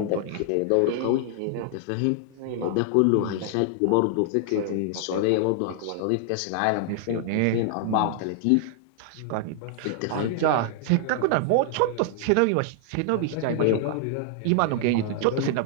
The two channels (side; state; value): both; different; correlation -0.01